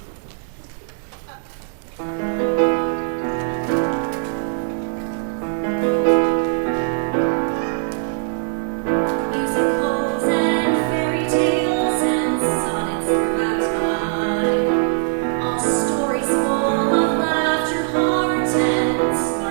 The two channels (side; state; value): left; silent; digital silence